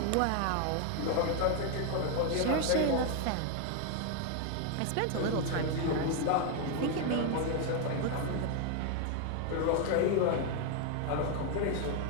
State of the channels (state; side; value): different; both; correlation 0.00